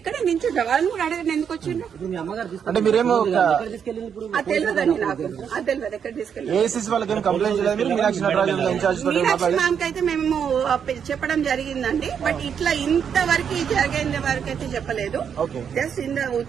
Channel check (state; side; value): quieter; left; 7.6 dB